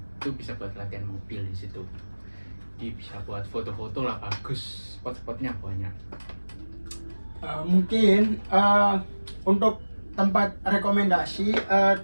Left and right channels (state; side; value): inverted; both; correlation -1.00